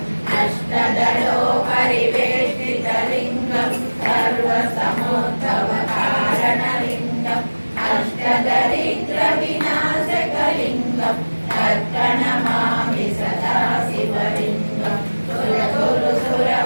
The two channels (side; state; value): both; inverted; correlation -1.00